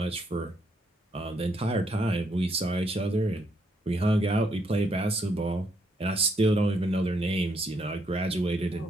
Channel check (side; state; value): both; normal; correlation 0.74